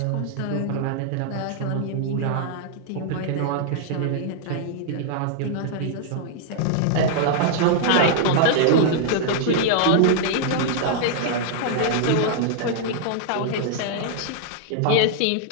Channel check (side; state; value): both; different; correlation -0.01